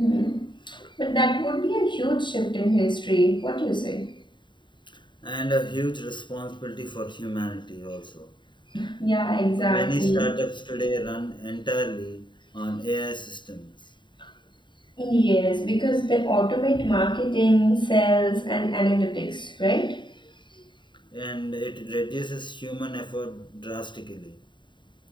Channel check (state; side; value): late; right; 0.23 ms